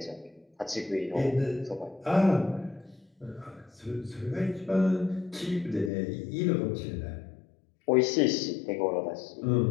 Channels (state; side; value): drops out; right; at 5.9 s